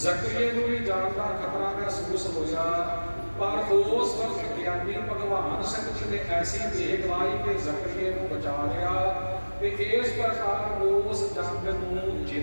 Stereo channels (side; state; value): both; inverted; correlation -1.00